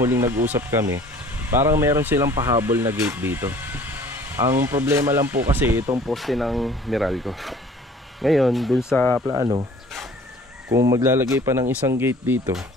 huling nag-usap kami, parang meron silang pahabol na gate dito. Ang problema lang po kasi itong poste ng Meralco. Ngayon dun sa plano, kung maglalagay pa ng isang gate dito,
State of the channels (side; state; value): both; normal; correlation 0.51